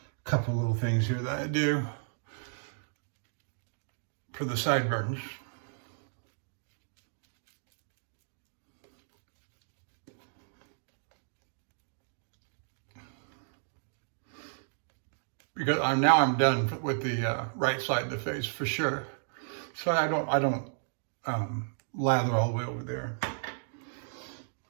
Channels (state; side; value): silent; left; digital silence